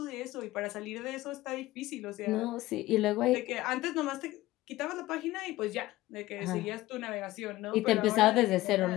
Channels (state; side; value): quieter; right; 17.5 dB